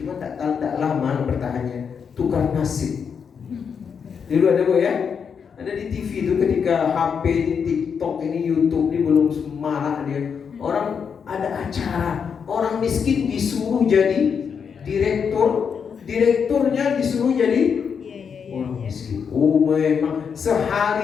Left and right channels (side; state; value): right; quieter; 6.7 dB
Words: cuma tak lama bertahannya, tukar nasib. Dulu ada, Bu, ya? Ada di TV itu ketika HP ini, TikTok ini, YouTube ini belum semarak dia. Orang ada acara, orang miskin disuruh jadi direktur, direkturnya disuruh jadi orang miskin. Oh, memang